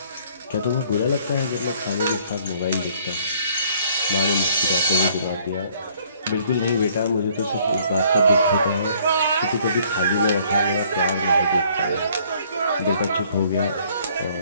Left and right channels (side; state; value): both; inverted; correlation -0.61